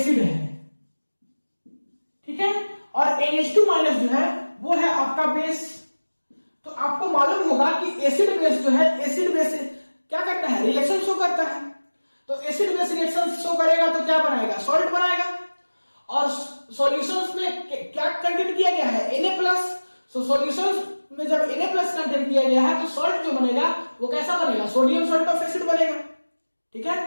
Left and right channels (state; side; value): inverted; both; correlation -1.00